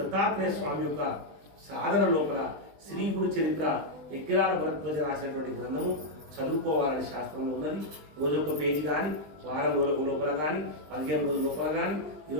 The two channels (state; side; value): late; left; 20 ms